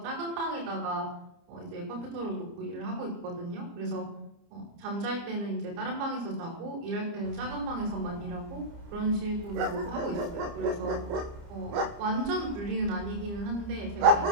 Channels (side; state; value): left; late; 29 ms